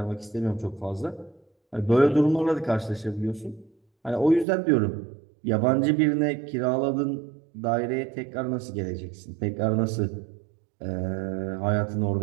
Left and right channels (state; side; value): drops out; left; at 4.5 s